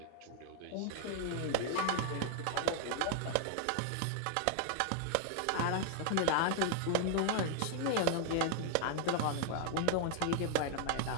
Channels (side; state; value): both; different; correlation 0.00